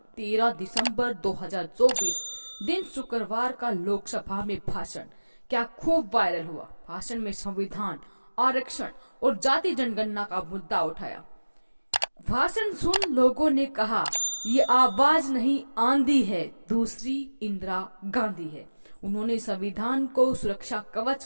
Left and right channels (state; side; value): inverted; both; correlation -1.00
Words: 13 दिसंबर 2024 दिन शुक्रवार का लोकसभा में भाषण क्या खूब वायरल हुआ। भाषण में संविधान, आरक्षण और जाति जनगणना का मुद्दा उठाया। भाषण सुन लोगों ने कहा, ये आवाज नहीं आंधी है, दूसरी इंदिरा गांधी है। उन्होंने संविधान को सुरक्षा कवच